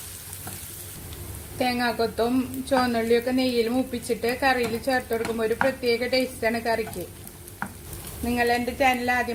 തേങ്ങാക്കൊത്തും ചുവന്നുള്ളിയൊക്കെ നെയ്യിൽ മൂപ്പിച്ചിട്ട് കറിയിൽ ചേർത്ത് കൊടുക്കുമ്പോൾ ഒരു പ്രത്യേക ടേസ്റ്റാണ് കറിക്ക്. നിങ്ങൾ എൻ്റെ ചാനൽ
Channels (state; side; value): identical; both; correlation 1.00